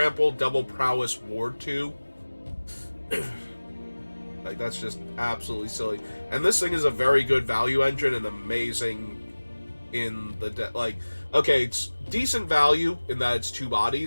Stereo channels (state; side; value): inverted; both; correlation -1.00